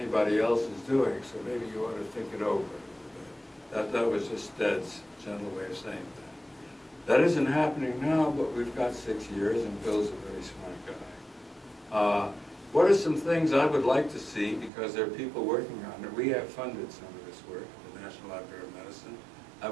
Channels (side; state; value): left; drops out; at 14.7 s